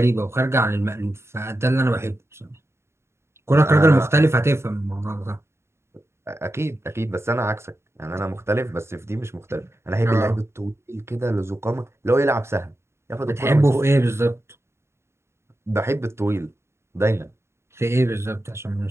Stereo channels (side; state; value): left; late; 0.13 ms